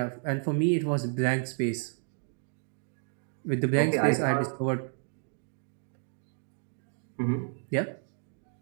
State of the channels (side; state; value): left; silent; digital silence